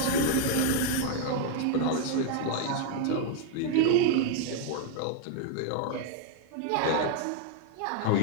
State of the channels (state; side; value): different; both; correlation 0.00